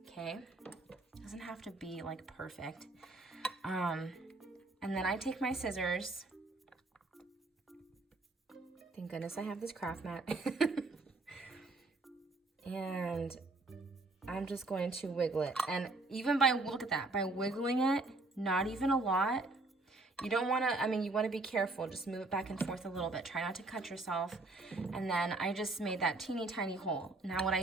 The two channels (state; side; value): quieter; left; 3.2 dB